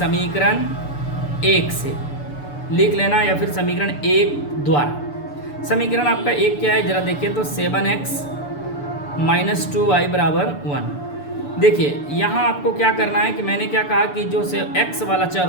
1 से लिख लेना, या फिर समीकरण 1 द्वारा। समीकरण आपका 1 क्या है जरा देखिए, तो 7x - 2y = 1। देखिए यहाँ आपको क्या करना है कि मैंने क्या कहा कि जो से x वाला चर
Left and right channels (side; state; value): right; late; 6.9 ms